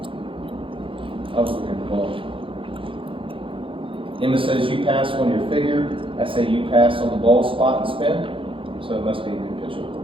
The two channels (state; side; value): late; left; 0.25 ms